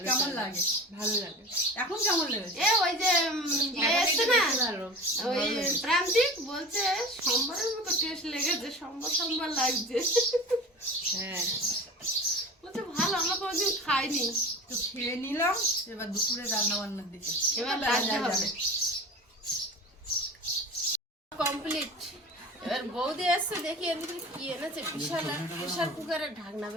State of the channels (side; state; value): both; normal; correlation 0.35